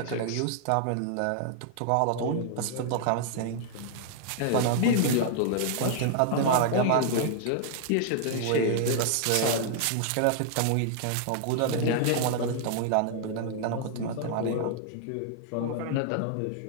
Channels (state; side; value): different; both; correlation 0.00